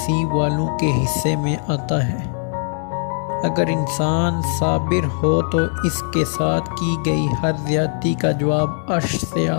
والوں کے حصے میں آتا ہے۔ اگر انسان صابر ہو تو اس کے ساتھ کی گئی ہر زیادتی کا جواب عرش سے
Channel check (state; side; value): silent; right; 58 dB below the other